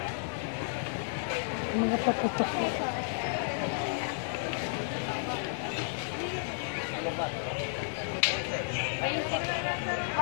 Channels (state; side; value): silent; right; digital silence